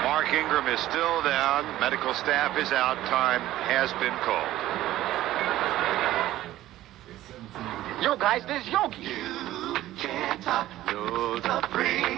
Mark Ingram is still down. Medical staff is out. Time has been called. Yo, guys, this is Yogi. Can't top the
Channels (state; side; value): quieter; left; 14.7 dB